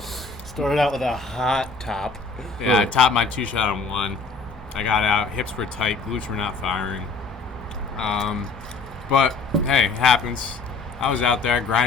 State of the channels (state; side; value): quieter; right; 4.2 dB